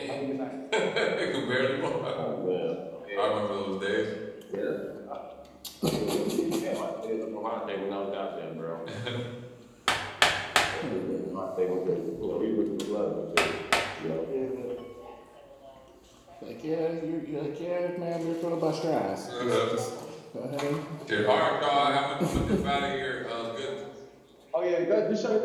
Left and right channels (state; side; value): identical; both; correlation 1.00